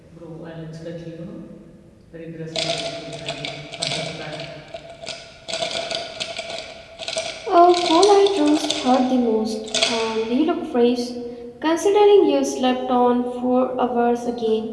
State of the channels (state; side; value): identical; both; correlation 1.00